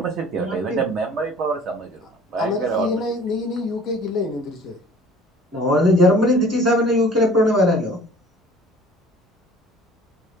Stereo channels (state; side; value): normal; both; correlation 0.49